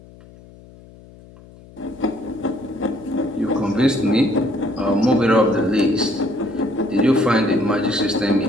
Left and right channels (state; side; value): noise; left; hum, 22 dB below the sound